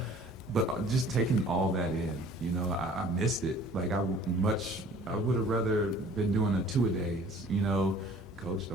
But just taking all that in, you know, I missed it. Like I would have rather been doing a 2-a-days, you know. Coach,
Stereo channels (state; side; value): normal; both; correlation 0.51